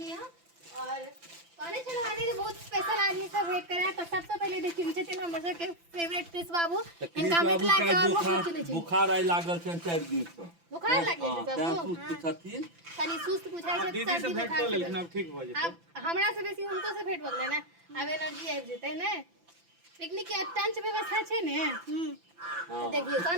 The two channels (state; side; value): late; left; 5.9 ms